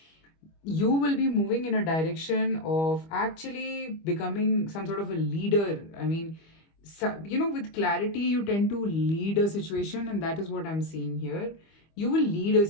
You will be moving in a direction of actually becoming some sort of a leader. I mean, with clarity, you tend to lead a situation, and that is what I'm seeing here. You will lead a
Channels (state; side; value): late; right; 25 ms